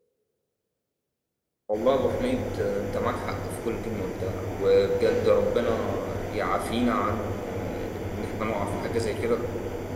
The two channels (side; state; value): both; identical; correlation 1.00